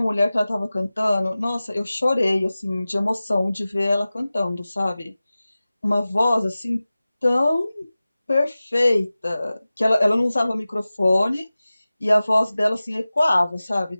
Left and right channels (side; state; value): both; inverted; correlation -0.97